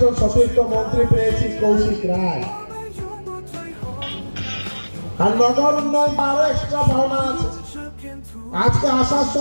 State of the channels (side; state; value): both; inverted; correlation -1.00